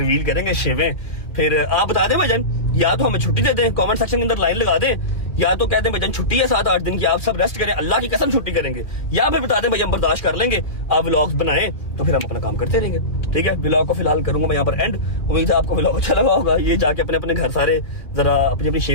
करेंगे शिवें। फिर आप बता दें भजन, या तो हमें छुट्टी दे दें, कमेंट सेक्शन के अंदर लाइन लगा दें, या तो कह दें भजन छुट्टी है 7-8 दिन की, आप सब रेस्ट करें, अल्लाह की कसम छुट्टी करेंगे, या फिर बता दें भैया हम बर्दाश्त कर लेंगे, आप व्लॉग्स बनाएं तो फिर हम अपना काम करते रहेंगे। ठीक है, व्लॉग को फिलहाल करूंगा मैं यहाँ पर एंड। उम्मीद है आपको व्लॉग अच्छा लगा होगा। ये जाके अपने अपने घर सारे जरा अपनी अपनी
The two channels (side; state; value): right; late; 2.1 ms